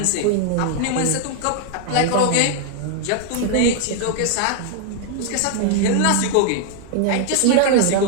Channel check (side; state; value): both; different; correlation 0.00